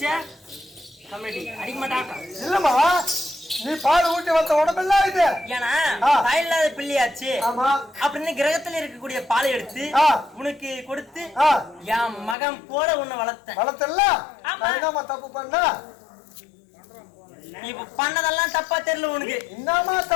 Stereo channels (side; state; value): right; drops out; at 12.4 s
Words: கமெடி அடிக்க மாட்டாங்க. இல்லம்மா நீ பால் ஊட்டி வந்த உடம்பெல்லாம் இது. ஏன்னா தாயில்லாத பிள்ளையாச்சு அப்படின்னு கிரகத்துல இருக்கக்கூடிய பாலை எடுத்து உனக்கு கொடுத்து என் மகன் போல உன்னை வளர்த்தல. தப்பு பண்ண நீ பண்ணதெல்லாம் தப்பா தெரியல உனக்கு. என்னமா